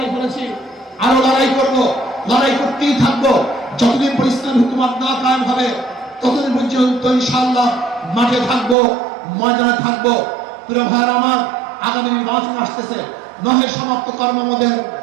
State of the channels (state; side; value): drops out; left; at 8.8 s